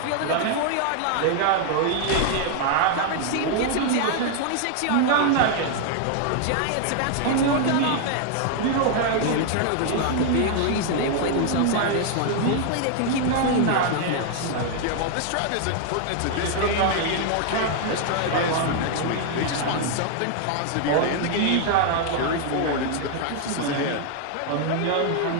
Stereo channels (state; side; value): different; both; correlation 0.00